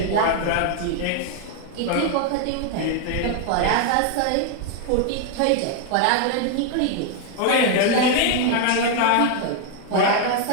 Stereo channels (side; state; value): both; different; correlation 0.00